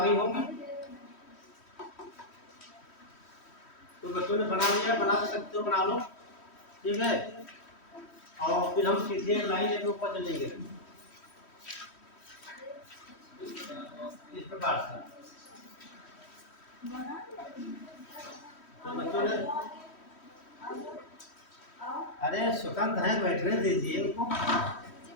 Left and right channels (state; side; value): late; right; 3.1 ms